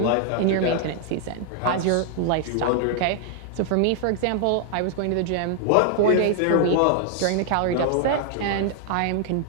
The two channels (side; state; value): both; different; correlation 0.00